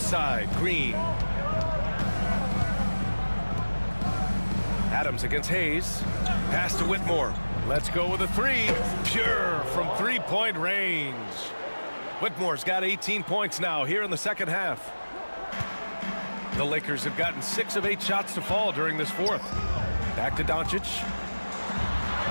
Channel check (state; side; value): inverted; both; correlation -1.00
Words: Green. Adams against Hayes. Pass to Whitmore. Let's go with a 3. Pure from 3-point range. Whitmore's got 18 points now here in the second half. The Lakers have gotten 6 of 8 shots to fall during this 4th. Back to Doncic.